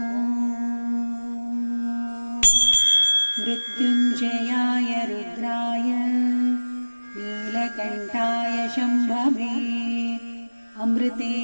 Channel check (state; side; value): inverted; both; correlation -1.00